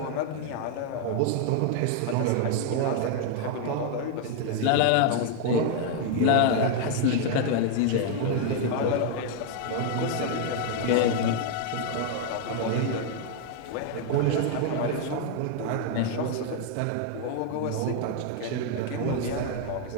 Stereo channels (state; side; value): different; both; correlation 0.00